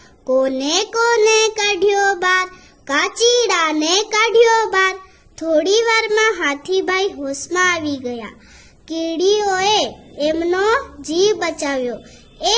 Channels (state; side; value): identical; both; correlation 1.00